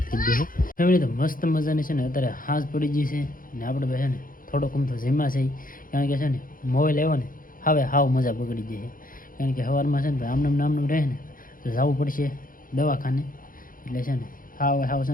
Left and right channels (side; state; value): right; late; 0.40 ms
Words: થઈ ગયો છે ફેમિલી તો મસ્ત મજાની છે ને અત્યારે હાંસ પડી ગઈ છે ને આપણે ભાઈ છે ને થોડોક તો જીમા છે કારણ કે છે ને મોબાઈલ આવ્યો ને હવે હાવ મજા બગડી ગઈ છે કારણ કે સવારમાં છે ને ભાઈ આમનામ રહે ને તો જવું પડશે દવાખાને એટલે છે ને હાવ છે